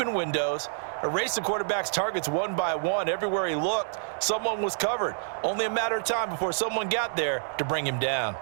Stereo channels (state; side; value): silent; left; digital silence